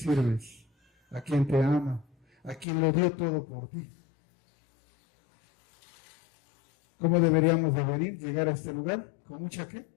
a quien te ama, a quien lo dio todo por ti. ¿Cómo deberíamos de venir, llegar a este lugar? ¿Con mucha qué?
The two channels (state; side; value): drops out; right; at 2.7 s